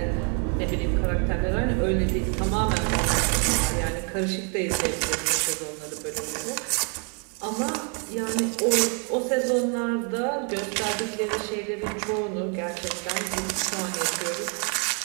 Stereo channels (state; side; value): quieter; left; 38.3 dB